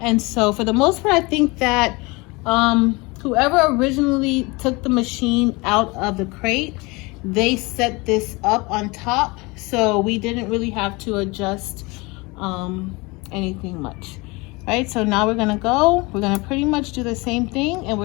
And so for the most part, I think that whoever originally took the machine out of the crate, they set this up on top, so we didn't really have to adjust anything much. Right, so now we're gonna pretty much do the same thing, and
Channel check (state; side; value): quieter; right; 25.3 dB